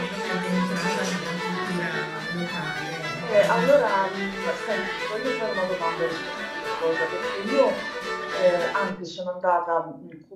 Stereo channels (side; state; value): both; identical; correlation 1.00